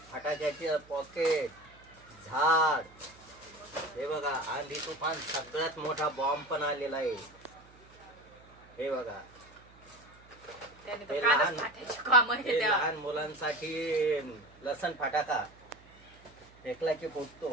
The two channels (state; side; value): noise; right; hum, 25 dB below the sound